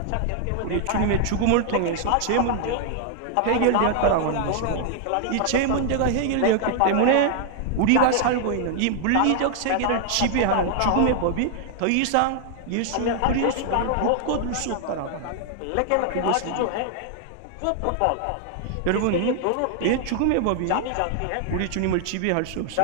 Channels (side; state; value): both; different; correlation 0.00